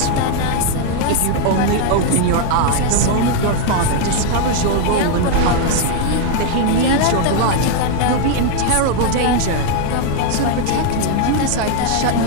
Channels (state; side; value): different; both; correlation 0.00